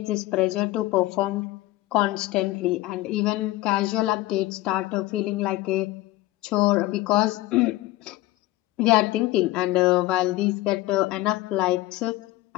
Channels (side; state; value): right; quieter; 17.4 dB